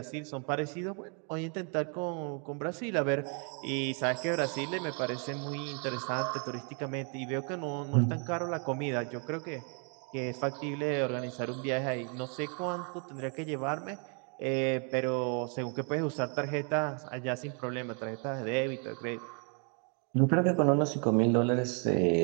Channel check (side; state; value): left; quieter; 38.8 dB